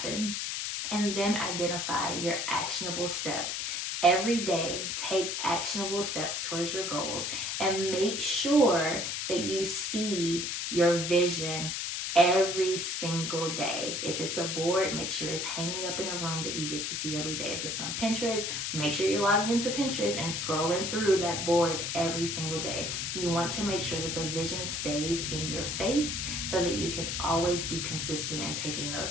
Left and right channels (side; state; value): left; noise; hiss, 2 dB below the sound